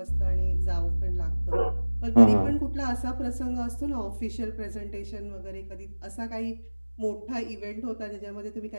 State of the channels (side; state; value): both; inverted; correlation -1.00